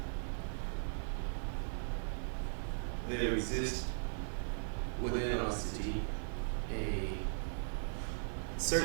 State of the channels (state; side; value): silent; left; digital silence